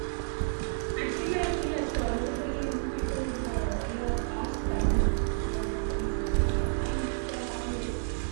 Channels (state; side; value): silent; left; digital silence